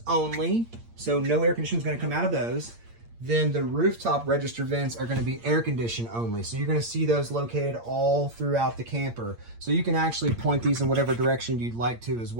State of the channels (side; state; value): left; late; 8.7 ms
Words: only. So no air conditioning is going to come out of those. Then the rooftop register vents are going to be air condition only. So you're going to see those located all throughout the camper. So you can actually point these in whatever direction you'd like to as